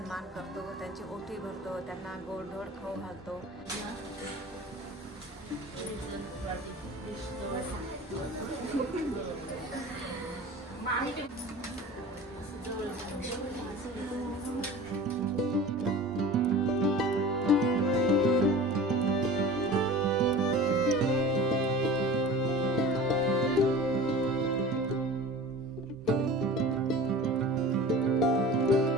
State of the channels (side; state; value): both; normal; correlation 0.38